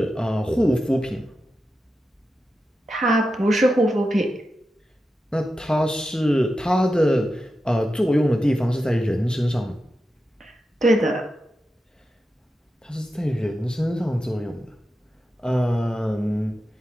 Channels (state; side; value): normal; both; correlation 0.90